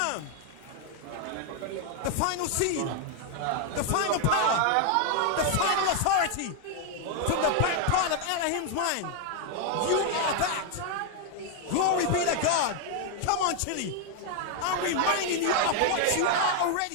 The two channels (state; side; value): different; both; correlation 0.00